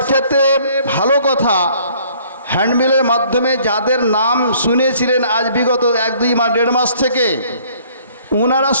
ভালো কথা, হ্যান্ডবিলের মাধ্যমে যাদের নাম শুনেছিলেন আজ বিগত 1-2 মাস 1.5 মাস থেকে, ওনারা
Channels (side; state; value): both; inverted; correlation -0.59